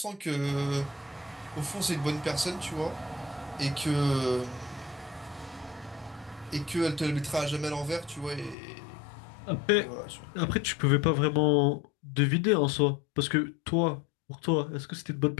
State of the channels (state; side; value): drops out; right; at 8.6 s